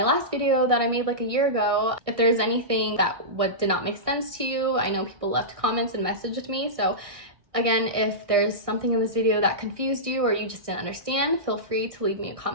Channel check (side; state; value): left; late; 1.6 ms